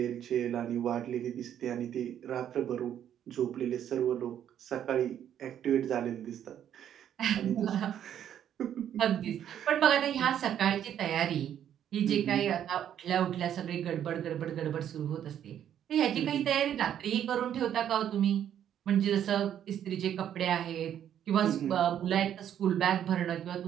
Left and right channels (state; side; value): quieter; left; 10.0 dB